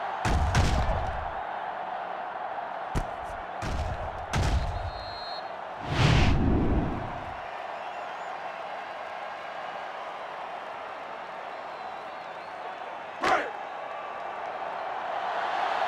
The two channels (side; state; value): both; identical; correlation 1.00